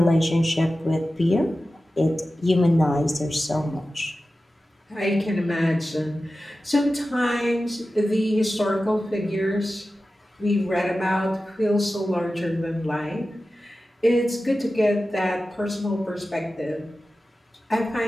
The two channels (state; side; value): normal; both; correlation 0.94